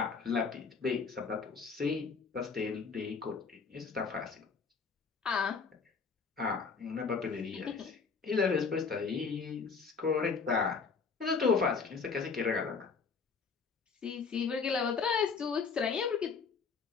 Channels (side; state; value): right; quieter; 5.2 dB